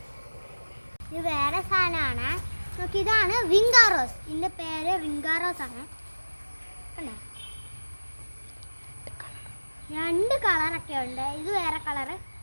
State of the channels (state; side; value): inverted; both; correlation -1.00